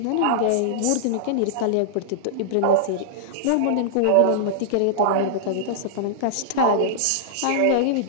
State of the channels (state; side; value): different; both; correlation -0.01